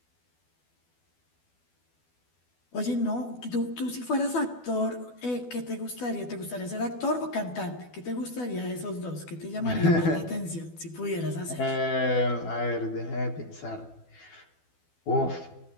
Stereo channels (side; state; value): right; late; 12 ms